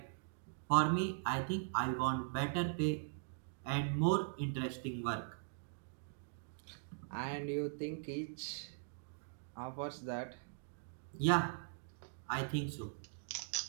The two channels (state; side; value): silent; left; digital silence